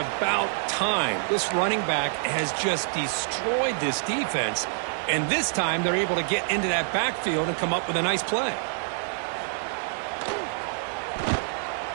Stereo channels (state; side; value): silent; left; digital silence